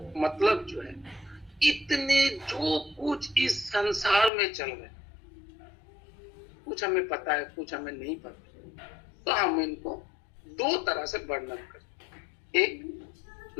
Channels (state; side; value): drops out; right; at 4.3 s